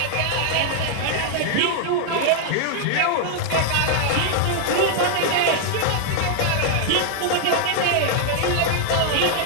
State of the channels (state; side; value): different; both; correlation -0.01